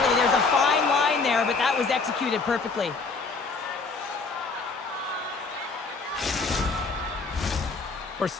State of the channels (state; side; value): quieter; right; 4.2 dB